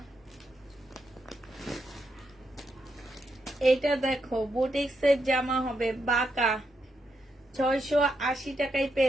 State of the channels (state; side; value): normal; both; correlation 0.82